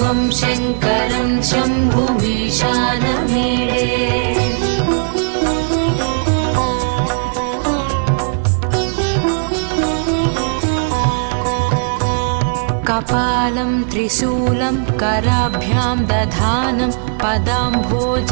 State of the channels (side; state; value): left; silent; digital silence